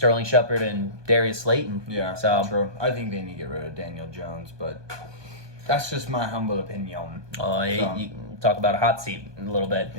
Shepard and Darius Slayton. Yeah, so true. I think they need to get rid of Daniel Jones, but that's just my humble opinion. You talk about a hot seat in a little bit.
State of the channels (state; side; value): late; left; 1.2 ms